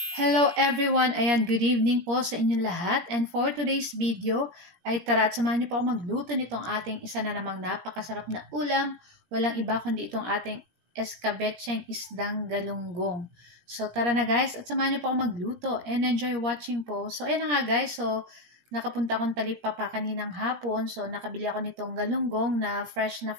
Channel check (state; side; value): late; left; 17 ms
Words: Hello everyone! Ayan, good evening po sa inyong lahat. And for today's video, ay tara at samahan niyo po ako magluto nitong ating isa na namang napakasarap na ulam. Walang iba kundi itong ating escabecheng isdang galunggong. So tara na guys, at samahan niyo po ako magluto and enjoy watching po. So ayan na nga guys, so nakapunta akong Talipapa kaninang hapon. So nakabili ako nitong galunggong na fresh